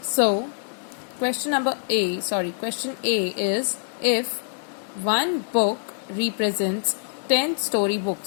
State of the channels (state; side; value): silent; right; 62 dB below the other